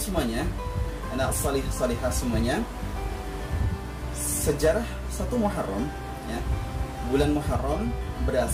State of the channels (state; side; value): identical; both; correlation 1.00